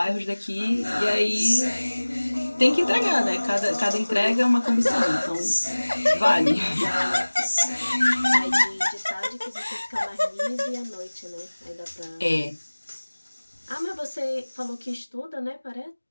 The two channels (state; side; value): inverted; both; correlation -1.00